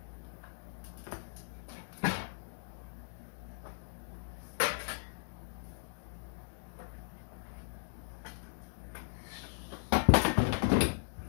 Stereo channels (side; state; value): right; silent; digital silence